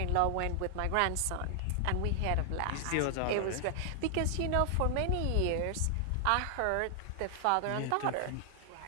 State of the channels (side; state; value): both; different; correlation 0.00